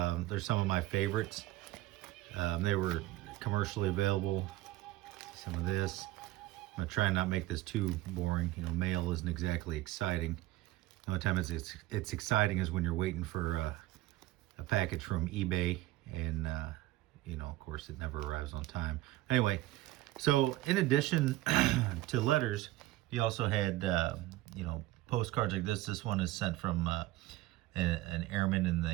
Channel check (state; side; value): quieter; left; 17.1 dB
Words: some of my favorites. They were commercially available. Some of this. I'm gonna try and not make this too boring. You know, mail isn't exactly exciting. The only time it's exciting is when you're waiting for a package from eBay, and you know, of course, it never arrives on time. Anyway, so in addition to letters, you also had you know, postcards like this. This one is sent from an airman in